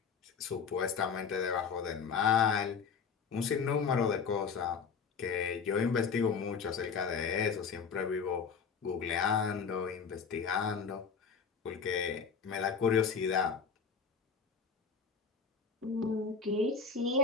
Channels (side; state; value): right; quieter; 5.7 dB